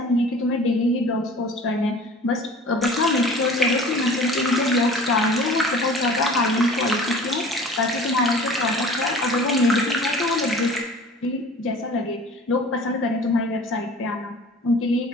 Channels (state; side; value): normal; both; correlation 0.44